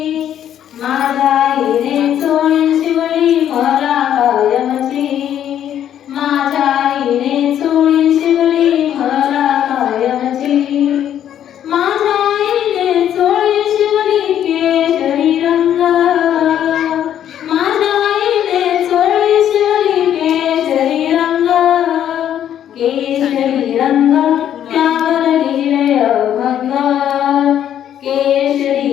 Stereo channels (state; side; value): quieter; right; 10.4 dB